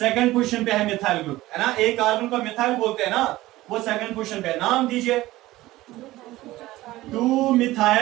पोजीशन पे है मिथाइल ग्रुप, है ना। एक कार्बन को मिथाइल बोलते हैं ना, वो सेकंड पोजीशन पे। नाम दीजिए। 2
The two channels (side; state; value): left; quieter; 17.3 dB